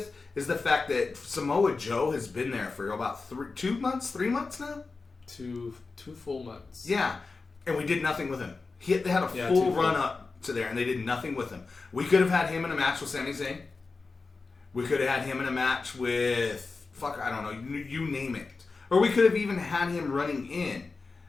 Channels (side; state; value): right; quieter; 4.1 dB